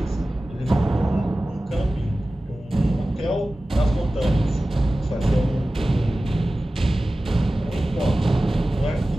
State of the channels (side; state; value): both; normal; correlation 0.96